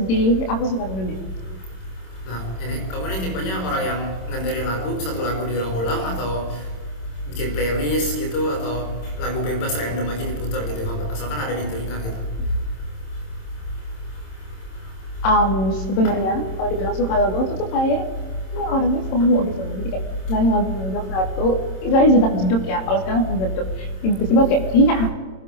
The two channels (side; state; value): right; late; 26 ms